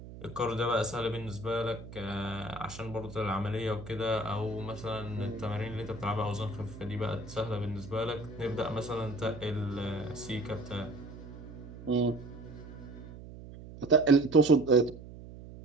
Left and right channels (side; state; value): right; noise; hum, 14 dB below the sound